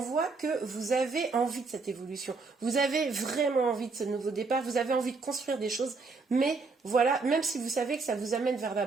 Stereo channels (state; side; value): quieter; left; 4.2 dB